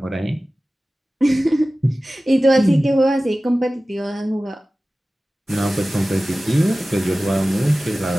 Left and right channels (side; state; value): both; normal; correlation 0.96